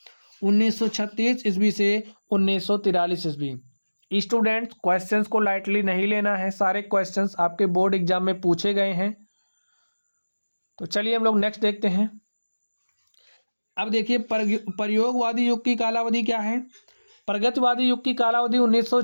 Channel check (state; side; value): inverted; both; correlation -1.00